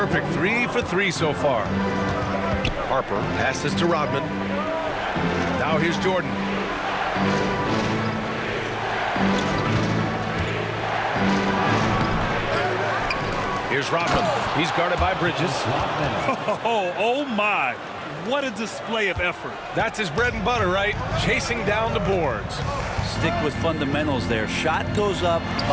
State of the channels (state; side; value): identical; both; correlation 1.00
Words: 3 for 3 so far. Harper passes to Rodman. Now here's Jordan. Here's Rodman. He's guarded by Bridges. Oh my. What a display of effort. That's his bread and butter, right? Chasing down the boards. Stick with fundamentals there. Shot goes up,